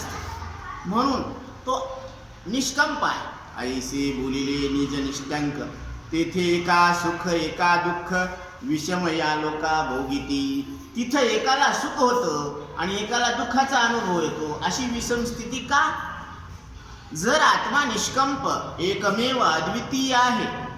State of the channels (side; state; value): both; identical; correlation 1.00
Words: म्हणून तो निष्कंप आहे। ऐसे बोलिले निज निष्कंक, तेथे एका सुख एका दुःख, विषम या लोका भोगिती। तिथं एकाला सुख होतं आणि एकाला दुःखाचा अनुभव येतो, अशी विषम स्थिती का? जर आत्मा निष्कंप एकमेव अद्वितीय आहे,